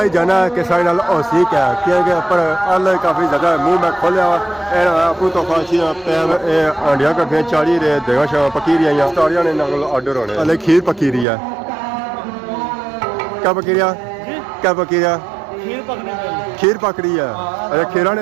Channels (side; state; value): left; drops out; at 11.2 s